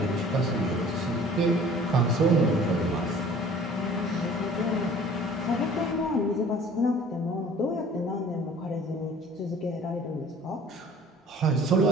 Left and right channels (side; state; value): both; normal; correlation 0.49